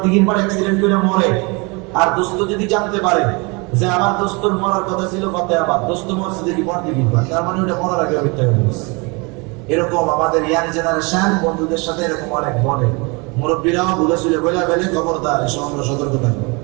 পার অ্যাক্সিডেন্ট করে মরে, আর দোস্ত যদি জানতে পারে যে আমার দোস্তর মরার কথা ছিল কতে আবার, দোস্ত মরছে দেখি বড়দিঘির পার, তার মানে ওটা মরার আগে মিথ্যা বলছে। এরকম আমাদের ইয়াং জেনারেশন বন্ধুদের সাথে এরকম অনেক বলে, মুরব্বীরাও ভুলে শুলে বলে ফেলে, খবরদার, এসব আমরা সতর্ক থাকবো।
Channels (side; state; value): left; quieter; 29.0 dB